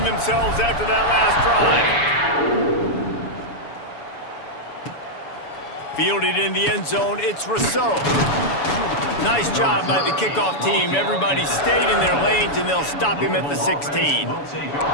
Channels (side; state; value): right; late; 7.0 ms